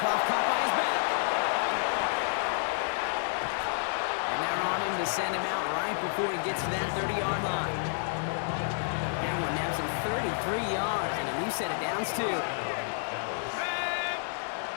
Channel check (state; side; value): silent; right; digital silence